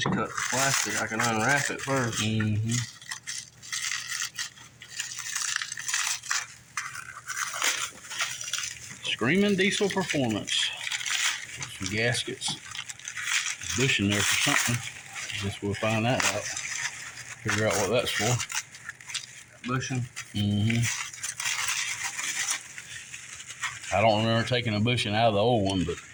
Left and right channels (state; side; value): identical; both; correlation 1.00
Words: cut the plastic. I can unwrap it first. Screaming Diesel Performance. Some gaskets. A bush in there for something. Guess we'll find that out. Figure out what that's for. Bushing. I don't remember taking a bushing out of the old one, but